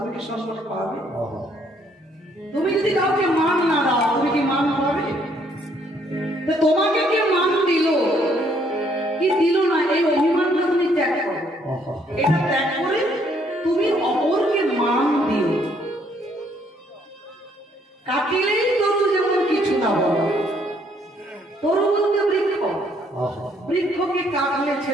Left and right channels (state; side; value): normal; both; correlation 0.67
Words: কি সম্মান পাবে? তুমি যদি কাউকে মান না দাও তুমি কি মান পাবে? তো তোমাকে কে মান দিল কি দিল না এই অভিমানটা তুমি ত্যাগ করো। এটা ত্যাগ করে তুমি অপরকে মান দিও। কাটিলেই তরু যেমন কিছু না বলো, তরু বলতে বৃক্ষ, বৃক্ষকে কাটলে